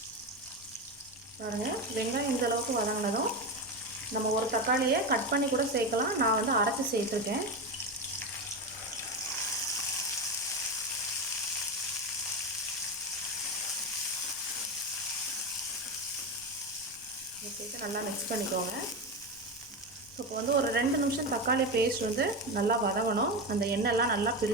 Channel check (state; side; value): noise; left; rumble, 26 dB below the sound